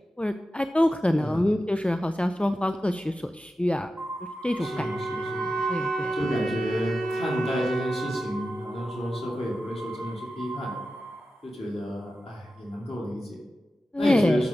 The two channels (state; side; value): normal; both; correlation 0.92